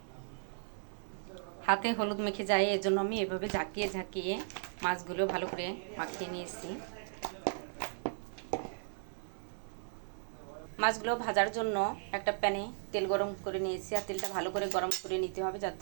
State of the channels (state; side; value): silent; left; digital silence